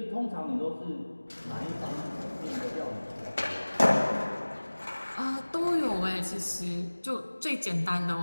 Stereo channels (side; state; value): both; inverted; correlation -1.00